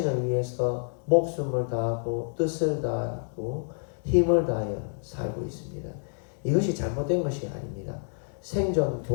위해서 목숨을 다하고 뜻을 다하고 힘을 다하여 살고 있습니다. 이것이 잘못된 것이 아닙니다. 생존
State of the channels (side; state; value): right; silent; digital silence